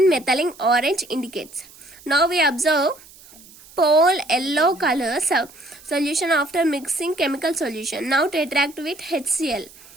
methylene orange indicates. Now we observe pale yellow color solution after mixing chemical solution. Now retract with HCl.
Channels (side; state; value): right; noise; hiss, 22 dB below the sound